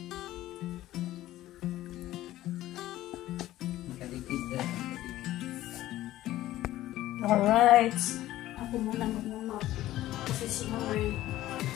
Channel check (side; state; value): right; quieter; 14.9 dB